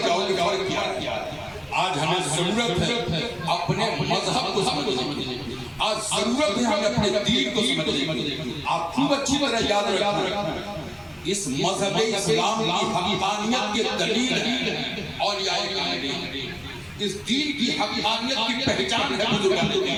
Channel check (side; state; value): both; identical; correlation 1.00